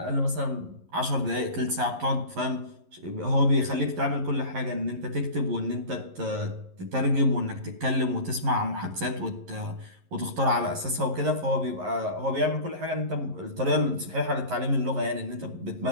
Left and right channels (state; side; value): late; left; 11 ms